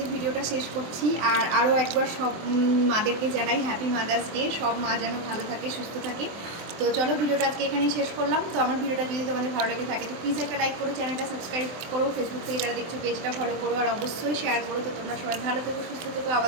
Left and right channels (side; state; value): left; late; 23 ms